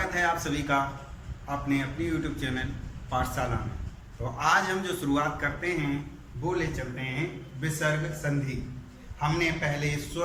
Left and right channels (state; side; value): identical; both; correlation 1.00